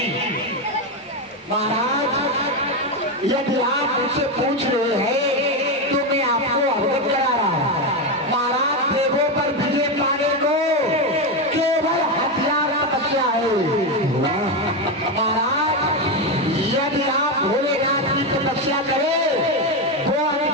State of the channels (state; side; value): normal; both; correlation 0.10